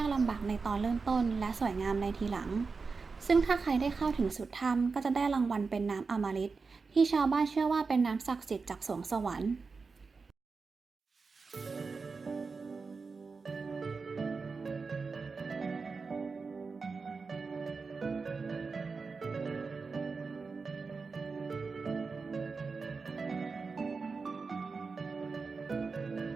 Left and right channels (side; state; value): left; quieter; 4.6 dB